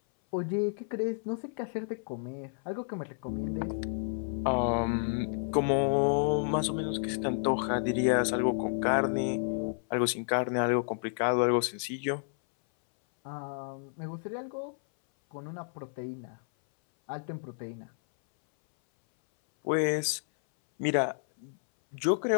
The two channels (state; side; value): silent; right; 57 dB below the other